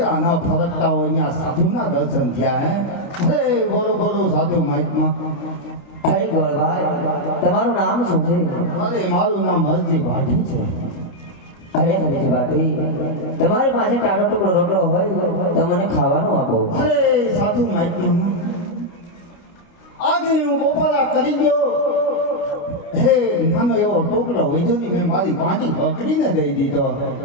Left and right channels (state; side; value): late; right; 29 ms